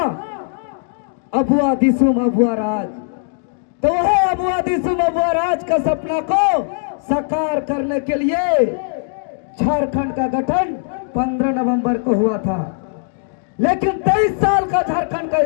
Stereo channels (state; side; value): silent; right; digital silence